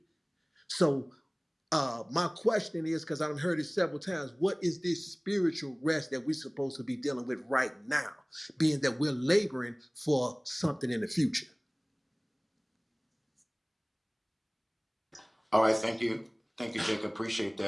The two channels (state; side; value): identical; both; correlation 1.00